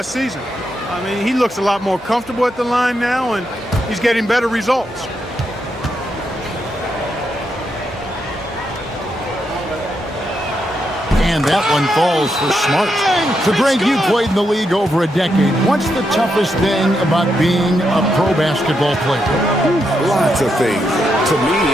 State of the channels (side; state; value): both; normal; correlation 0.82